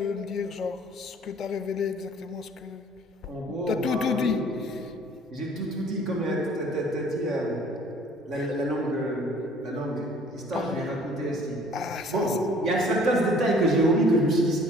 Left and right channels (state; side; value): normal; both; correlation 0.53